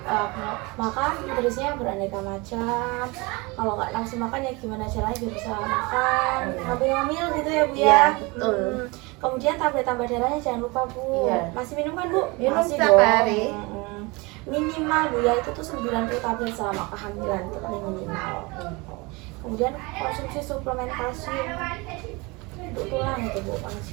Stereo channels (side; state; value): left; quieter; 25.8 dB